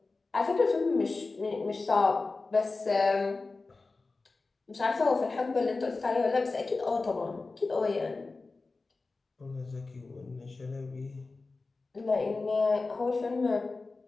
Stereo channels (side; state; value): right; quieter; 3.7 dB